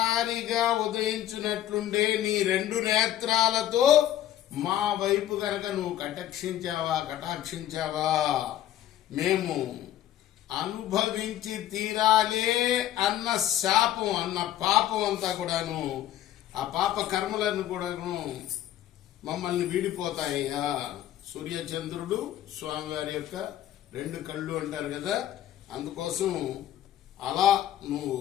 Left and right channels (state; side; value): quieter; right; 12.4 dB